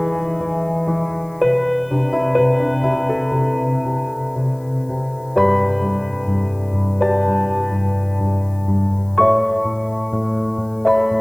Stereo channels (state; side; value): noise; left; hiss, 29 dB below the sound